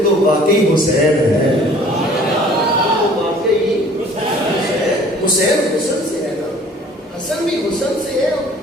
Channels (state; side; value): normal; both; correlation 0.52